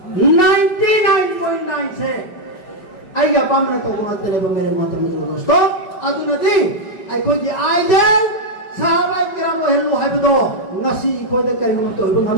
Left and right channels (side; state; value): right; late; 5.3 ms